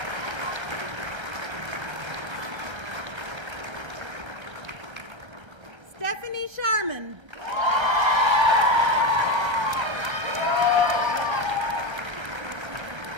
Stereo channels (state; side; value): late; left; 1.3 ms